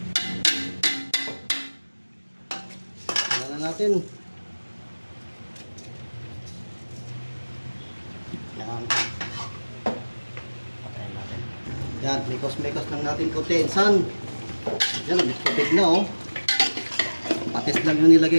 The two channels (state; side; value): inverted; both; correlation -1.00